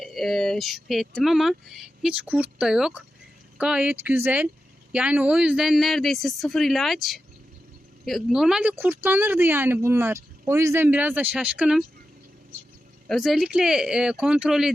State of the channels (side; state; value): both; normal; correlation 0.90